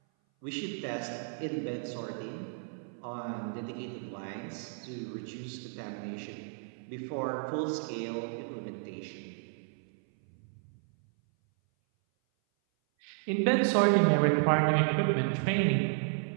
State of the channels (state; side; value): silent; left; 56 dB below the other